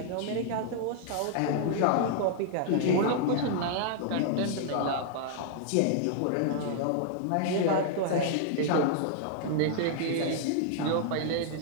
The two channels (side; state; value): both; different; correlation -0.01